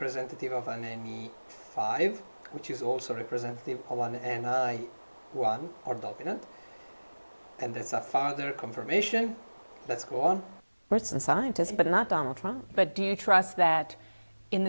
of an NE5, which is also representative of an NI1 or dominant. And that's a further confirmation. Let's go on. Experts and scientists, but not Donald Trump. But do you trust that in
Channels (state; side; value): inverted; both; correlation -1.00